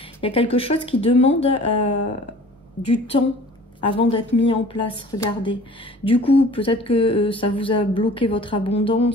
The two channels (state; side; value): normal; both; correlation 0.46